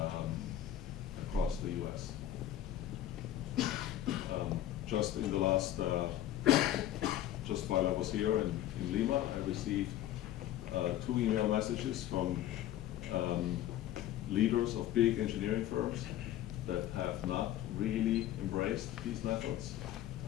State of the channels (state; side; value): quieter; right; 12.5 dB